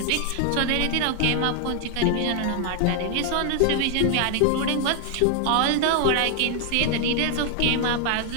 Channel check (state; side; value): different; both; correlation 0.00